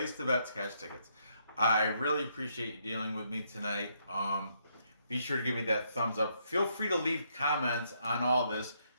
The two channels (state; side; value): inverted; both; correlation -0.74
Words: the bets, cash tickets. I really appreciate you dealing with me tonight. Be sure to give me that thumbs up. Feel free to leave comments on all this.